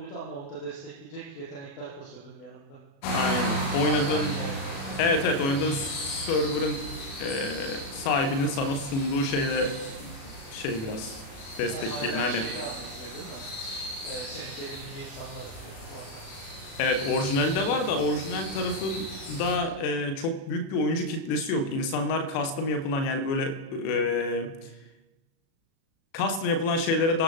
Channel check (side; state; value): right; late; 36 ms